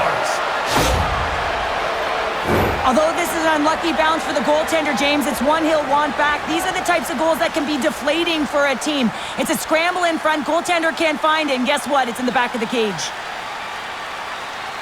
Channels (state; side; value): identical; both; correlation 1.00